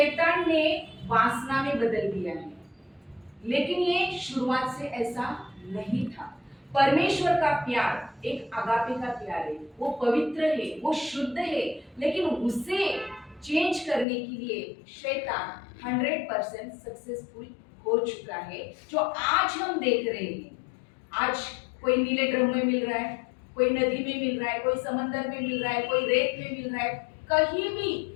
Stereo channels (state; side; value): drops out; right; at 14.1 s